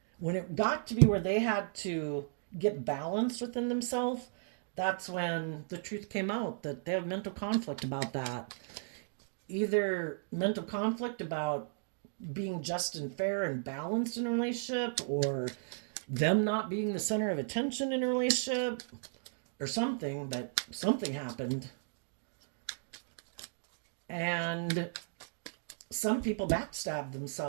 when it got to be where they had to get balanced within themselves, that's when the truth came out that they have mental conflict about that. Either mental conflict about being just and fair and balanced in a relationship, or them not being the center of attention in a relationship, or something, but something happened. And some people backstab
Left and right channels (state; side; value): silent; left; digital silence